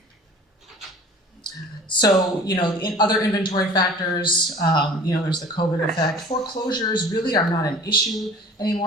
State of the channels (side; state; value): both; normal; correlation 0.44